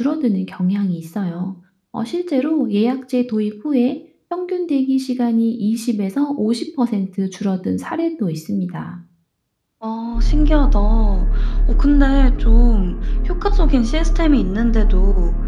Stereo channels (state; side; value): identical; both; correlation 1.00